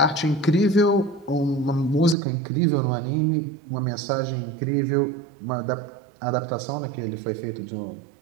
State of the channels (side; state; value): left; drops out; at 2.1 s